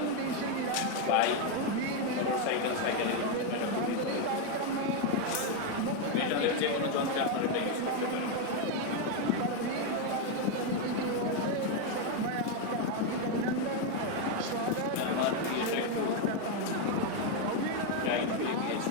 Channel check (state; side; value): different; both; correlation 0.02